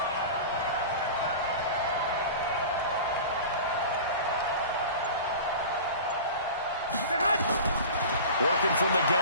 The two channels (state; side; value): inverted; both; correlation -0.35